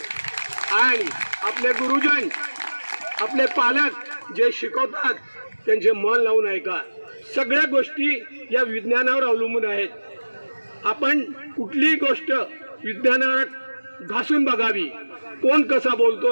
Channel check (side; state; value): both; inverted; correlation -1.00